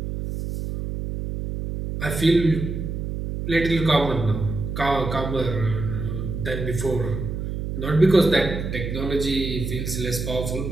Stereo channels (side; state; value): right; noise; hum, 4 dB below the sound